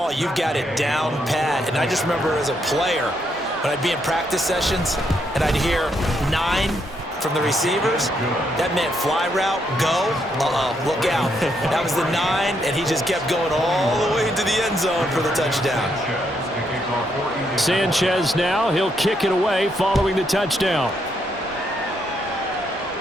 You've got it down pat. And I just remember as a player, when I'd be in practice sessions and I'd hear 9 from the receivers, that meant fly route, go, look out. That was the 9, and he just kept going all the way into the end zone for the touchdown. Sanchez now, he'll kick it away following the touchdown.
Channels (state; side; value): normal; both; correlation 0.76